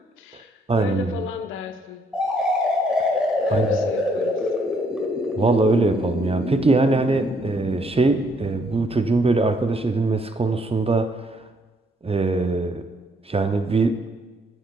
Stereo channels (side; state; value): both; normal; correlation 0.69